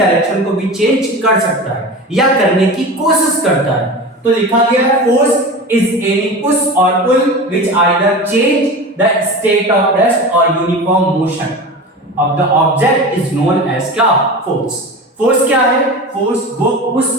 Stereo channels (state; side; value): normal; both; correlation 0.30